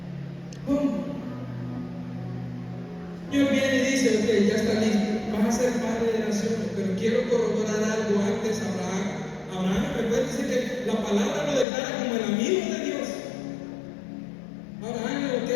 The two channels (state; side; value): drops out; right; at 11.7 s